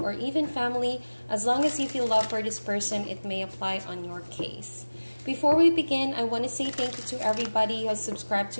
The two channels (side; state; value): both; inverted; correlation -1.00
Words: even family. As long as you feel love for this person, it may apply on your case. Before we begin, I want to say thank you to everybody who has subscribed